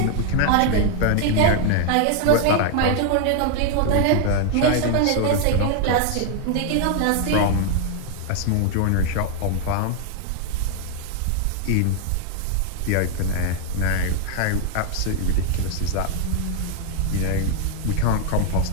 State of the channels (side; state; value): both; different; correlation 0.00